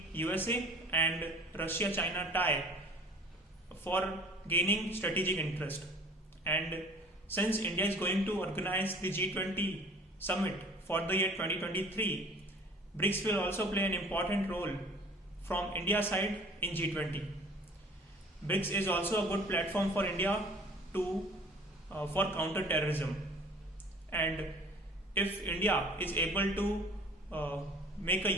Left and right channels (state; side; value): normal; both; correlation 0.49